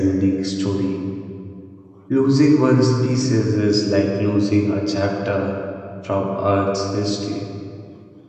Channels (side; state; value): both; identical; correlation 1.00